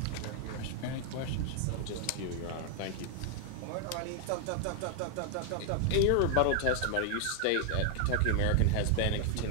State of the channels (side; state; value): both; different; correlation 0.00